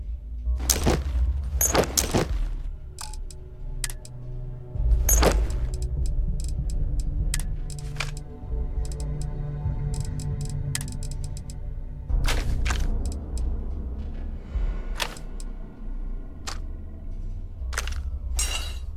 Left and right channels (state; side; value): identical; both; correlation 1.00